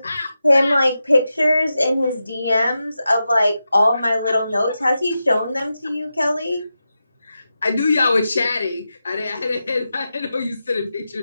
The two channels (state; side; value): inverted; both; correlation -0.90